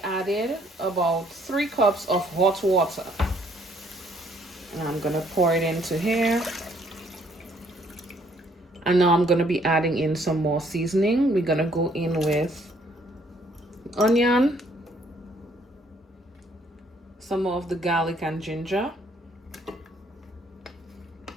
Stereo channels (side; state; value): both; normal; correlation 0.65